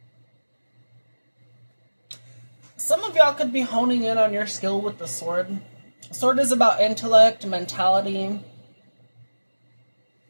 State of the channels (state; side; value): inverted; both; correlation -1.00